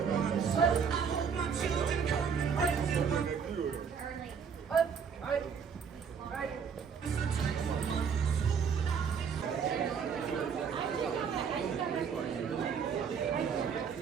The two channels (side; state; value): left; quieter; 6.6 dB